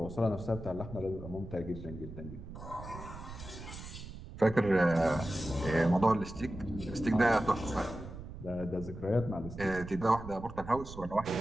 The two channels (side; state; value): right; noise; rumble, 12 dB below the sound